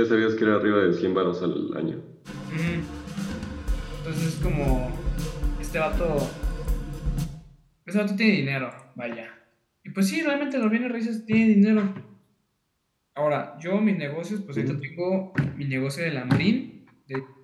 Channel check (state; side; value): identical; both; correlation 1.00